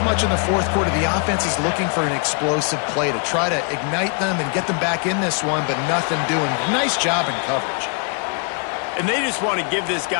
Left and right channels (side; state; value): right; quieter; 39.1 dB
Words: much in the fourth quarter, the offense is looking for an explosive play to try to ignite them and get them back in this one, but nothing doing. Nice job in coverage. And they just want to give this